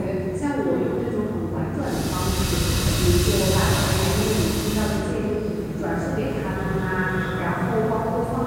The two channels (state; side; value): identical; both; correlation 1.00